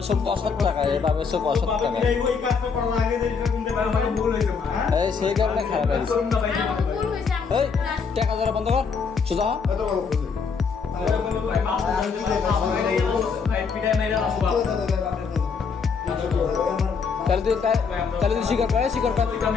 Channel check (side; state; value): right; quieter; 5.5 dB